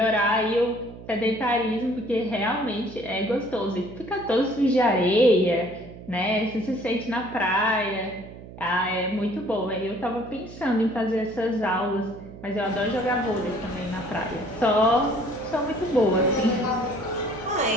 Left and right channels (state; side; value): noise; right; hum, 15 dB below the sound